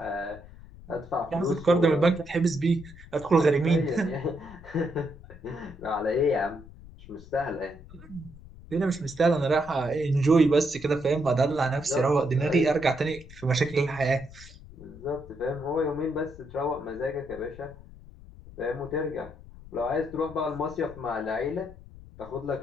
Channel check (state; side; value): noise; left; rumble, 18 dB below the sound